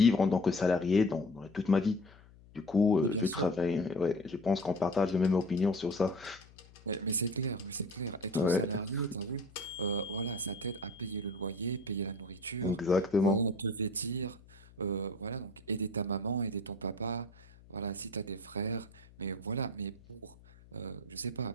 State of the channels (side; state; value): left; noise; hum, 24 dB below the sound